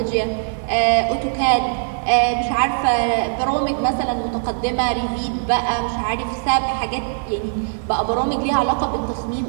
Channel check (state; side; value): silent; left; digital silence